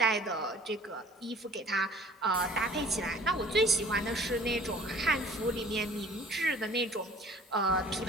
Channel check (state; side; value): normal; both; correlation 0.50